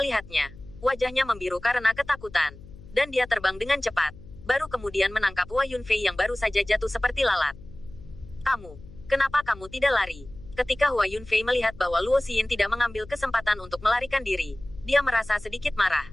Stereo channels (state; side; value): noise; left; hum, 18 dB below the sound